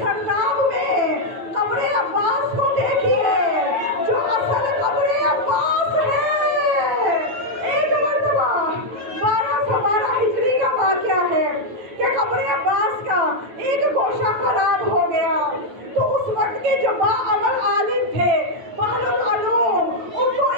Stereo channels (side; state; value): left; late; 9.1 ms